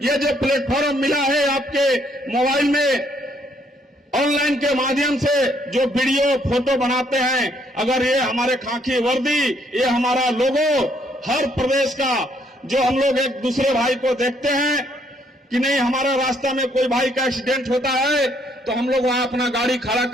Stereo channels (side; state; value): both; normal; correlation 0.69